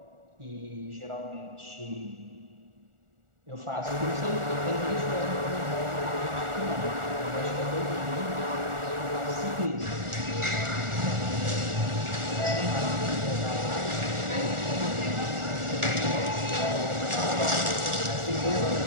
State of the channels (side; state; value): left; late; 1.4 ms